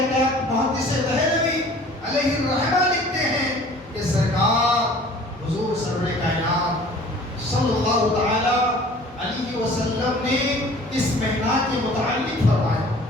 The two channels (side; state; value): both; normal; correlation 0.49